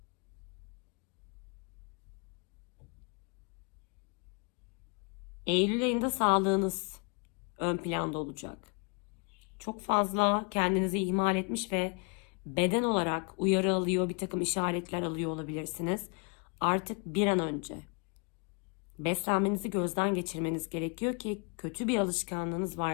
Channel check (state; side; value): quieter; right; 34.4 dB